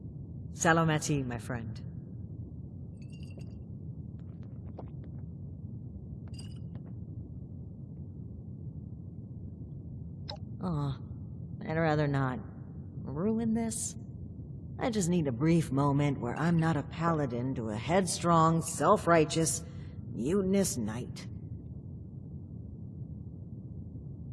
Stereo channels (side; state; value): both; identical; correlation 1.00